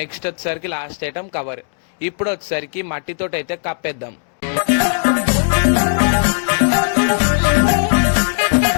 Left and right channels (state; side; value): silent; right; digital silence